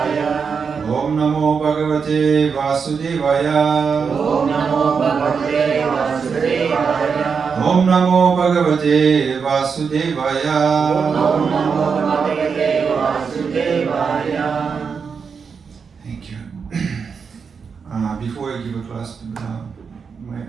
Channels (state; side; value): quieter; left; 5.9 dB